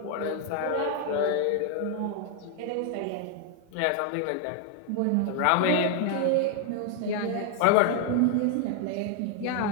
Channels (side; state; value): both; different; correlation 0.00